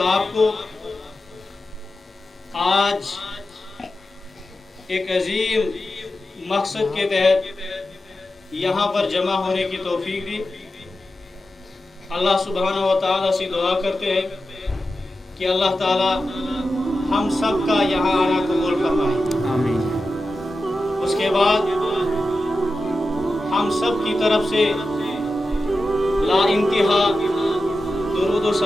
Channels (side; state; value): both; normal; correlation 0.92